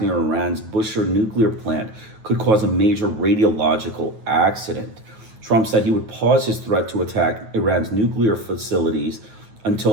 Iran's Bushehr nuclear plant could cause a major radiological accident. Trump said he would pause his threat to attack Iran's nuclear facilities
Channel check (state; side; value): late; left; 9.3 ms